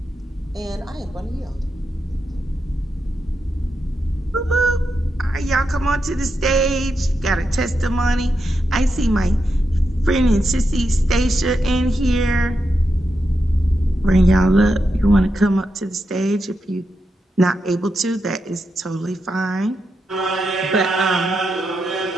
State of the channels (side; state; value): both; normal; correlation 0.86